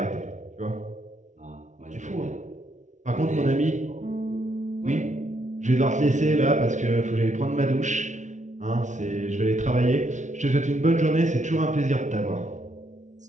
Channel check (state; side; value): late; left; 0.36 ms